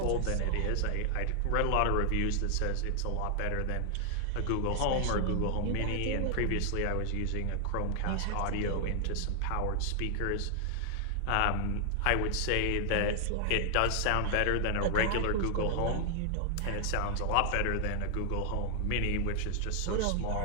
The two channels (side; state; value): both; different; correlation 0.00